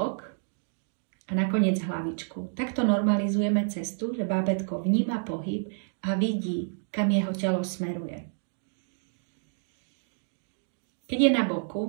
a nakoniec hlavičku. Takto normalizujeme cestu, že bábätko vníma pohyb a vidí, kam jeho telo smeruje. Keď je na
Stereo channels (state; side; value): silent; left; digital silence